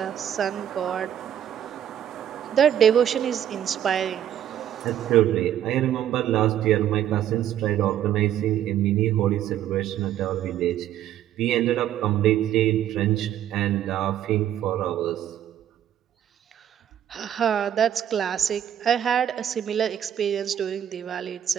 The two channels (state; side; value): quieter; left; 10.6 dB